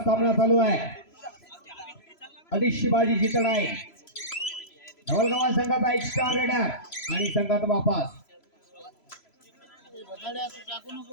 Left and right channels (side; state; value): right; late; 3.0 ms